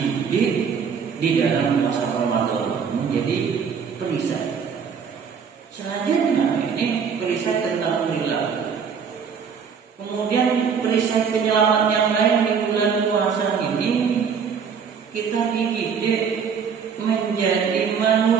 di dalam masa Ramadan menjadi perisai. Selanjutnya ini perisai tentang perilaku. Kemudian perisai penyelamat yang lain di bulan puasa ini, kita dididik menjadi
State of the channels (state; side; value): quieter; left; 6.5 dB